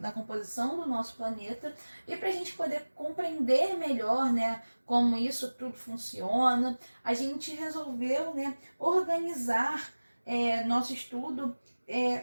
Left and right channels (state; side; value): inverted; both; correlation -1.00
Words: composição do nosso planeta, e para a gente poder compreender melhor, né, como isso tudo funciona, a gente resolveu, né, organizar nosso estudo